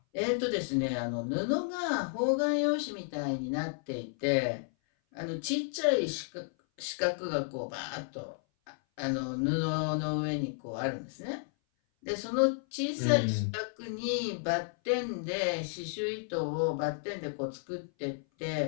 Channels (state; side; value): silent; right; 56 dB below the other